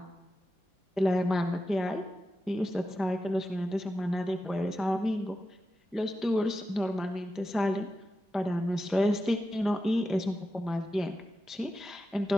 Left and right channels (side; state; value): both; normal; correlation 0.91